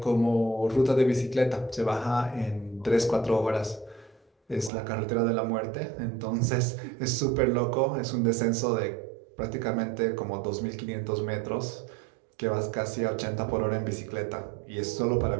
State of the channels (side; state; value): left; drops out; at 4.7 s